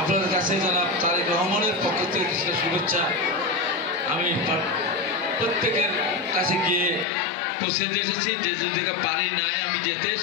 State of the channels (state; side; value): drops out; right; at 7.1 s